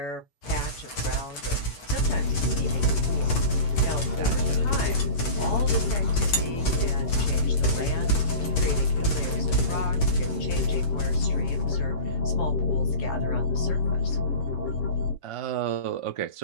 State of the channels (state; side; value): late; right; 7.3 ms